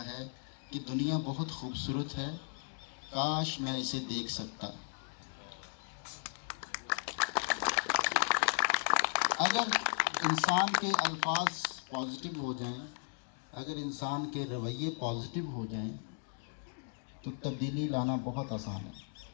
ہے کہ دنیا بہت خوبصورت ہے, کاش میں اسے دیکھ سکتا. اگر انسان کے الفاظ پازیٹیو ہو جائیں, اگر انسان کے رویے پازیٹیو ہو جائیں تو تبدیلی لانا بہت آسان ہے.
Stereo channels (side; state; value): right; silent; 54 dB below the other